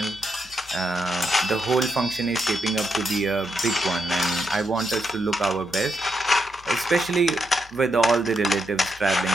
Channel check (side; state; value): both; normal; correlation 0.82